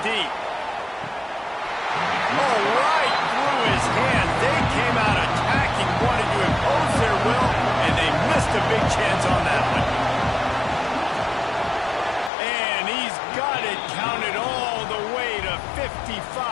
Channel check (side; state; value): right; drops out; at 12.3 s